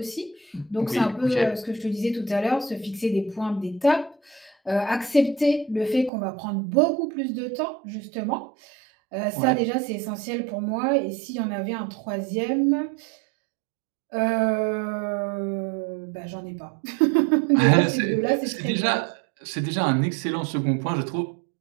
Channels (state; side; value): drops out; left; at 6.1 s